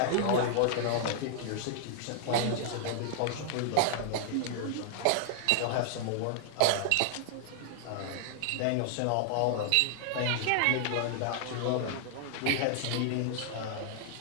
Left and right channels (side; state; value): both; different; correlation -0.01